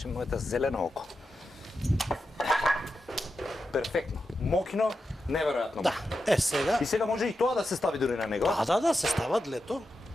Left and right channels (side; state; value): both; normal; correlation 0.89